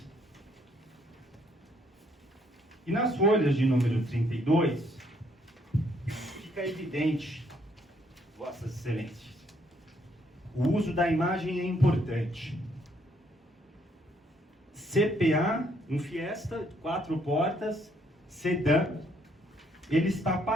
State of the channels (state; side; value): normal; both; correlation 0.69